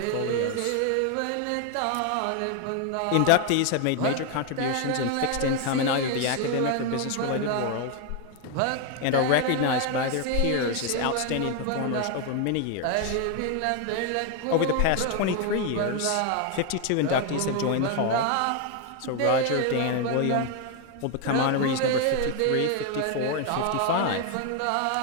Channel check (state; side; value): different; both; correlation 0.01